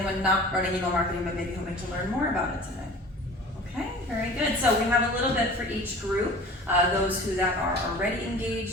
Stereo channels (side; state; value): both; normal; correlation 0.42